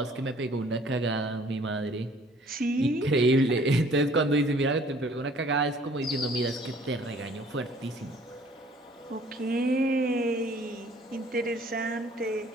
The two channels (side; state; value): both; normal; correlation 0.56